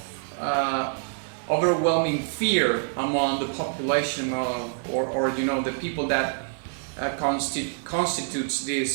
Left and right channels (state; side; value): silent; left; digital silence